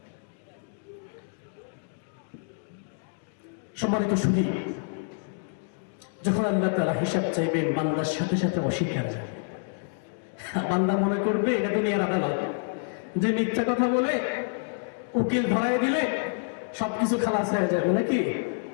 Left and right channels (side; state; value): right; silent; digital silence